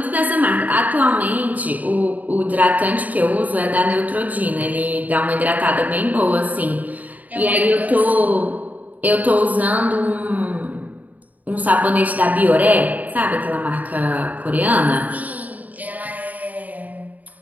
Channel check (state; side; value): late; left; 0.077 ms